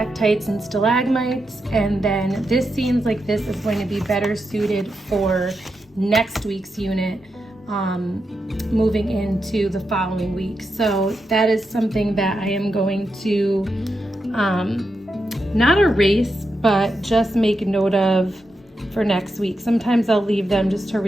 and stalagmites. And then this seems like this is going to be better suited for next week's unit, moving into the following week. So that is something that I am going to not erase, but just make note of for next week. Sometimes I'll leave them just to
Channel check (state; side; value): normal; both; correlation 0.86